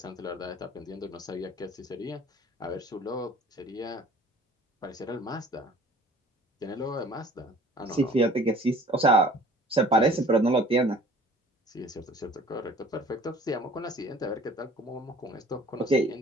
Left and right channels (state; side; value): normal; both; correlation 0.50